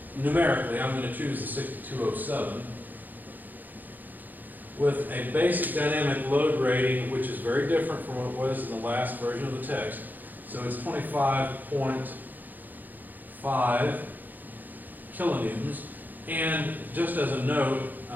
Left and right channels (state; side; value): late; left; 0.085 ms